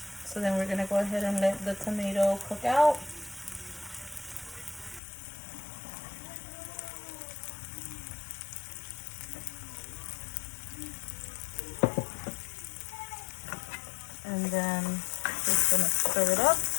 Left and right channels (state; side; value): drops out; right; at 5.0 s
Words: So then we're gonna go ahead and let the tomato cook out. And then just gonna stir it up.